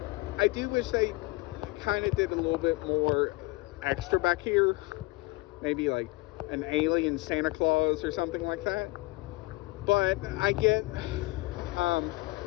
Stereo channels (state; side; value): quieter; right; 22.2 dB